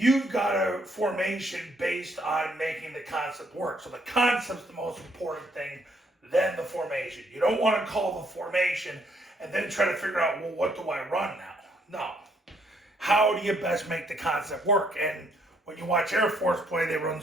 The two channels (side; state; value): both; normal; correlation 0.70